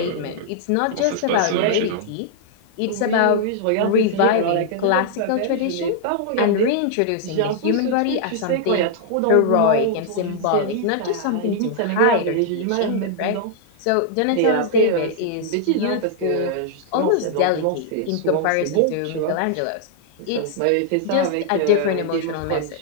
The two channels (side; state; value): both; different; correlation -0.01